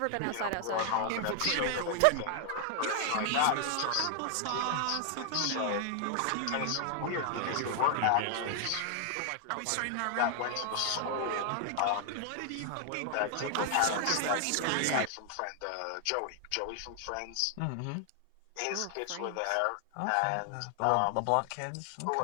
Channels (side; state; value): both; different; correlation 0.00